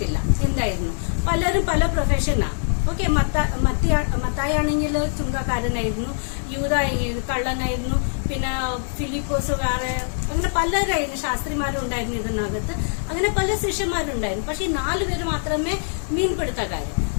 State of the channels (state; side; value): silent; right; digital silence